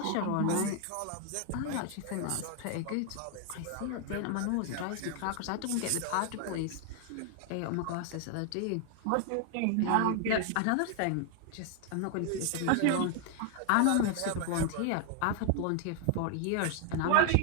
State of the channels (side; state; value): both; different; correlation 0.00